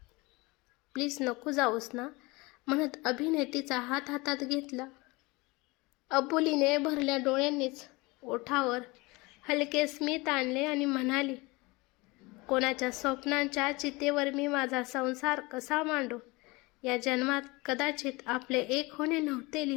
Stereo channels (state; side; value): quieter; right; 24.1 dB